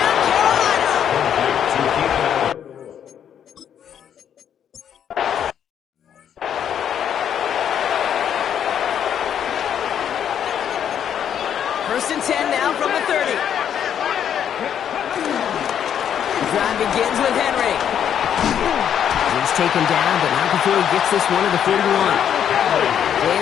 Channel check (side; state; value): right; quieter; 9.1 dB